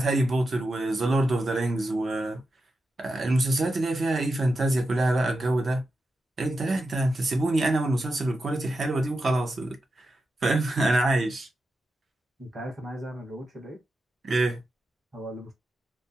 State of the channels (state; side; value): normal; both; correlation 0.89